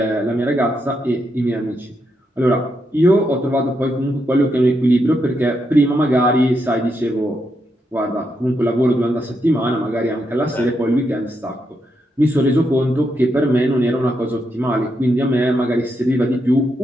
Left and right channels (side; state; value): both; normal; correlation 0.81